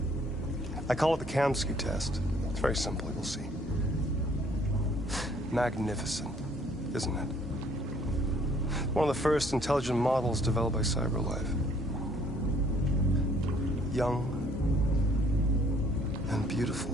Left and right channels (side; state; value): both; normal; correlation 0.61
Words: I call it the Kamsky test. It's very simple, you'll see. Magnificent, isn't it? One of the first intelligent models developed by CyberLife. Young and beautiful